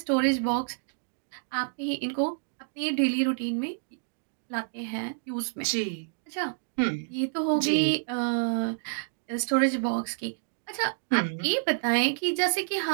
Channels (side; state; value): left; silent; digital silence